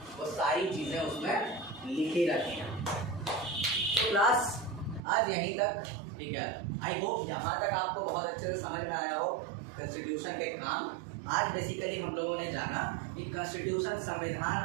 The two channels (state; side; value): drops out; left; at 5.0 s